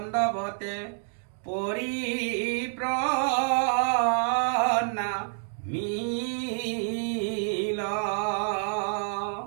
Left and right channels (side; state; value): left; silent; digital silence